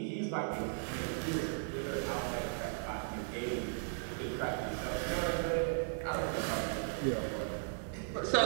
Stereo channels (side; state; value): left; silent; digital silence